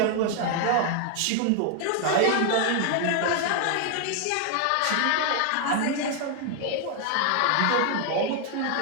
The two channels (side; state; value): both; different; correlation 0.00